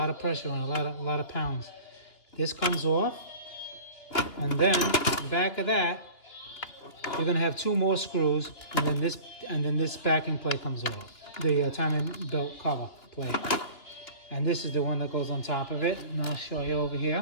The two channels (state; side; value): late; right; 2.9 ms